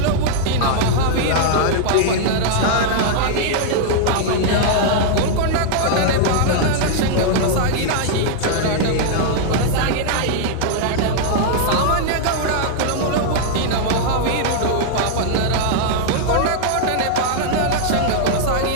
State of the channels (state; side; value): different; both; correlation -0.01